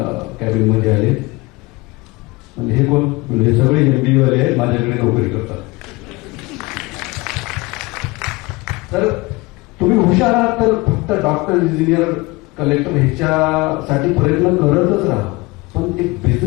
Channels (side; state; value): right; quieter; 23.4 dB